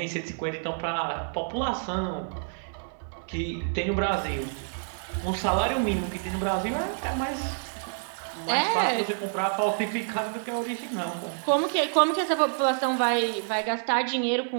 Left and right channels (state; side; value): silent; left; digital silence